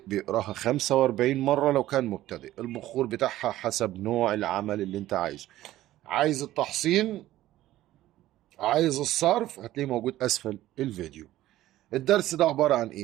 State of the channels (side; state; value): left; quieter; 14.8 dB